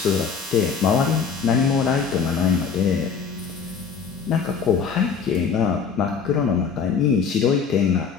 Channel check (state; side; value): quieter; right; 6.1 dB